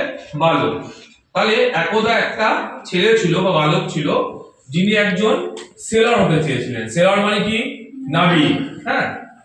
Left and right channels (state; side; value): identical; both; correlation 1.00